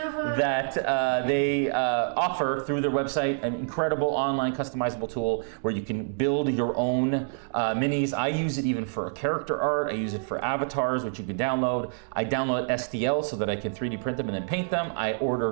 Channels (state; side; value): silent; left; digital silence